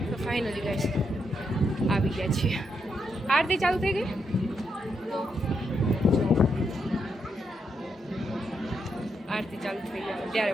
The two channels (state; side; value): normal; both; correlation 0.81